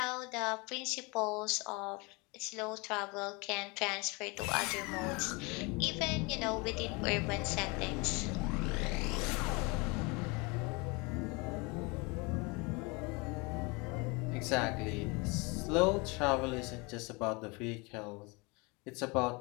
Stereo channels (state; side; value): quieter; right; 28.0 dB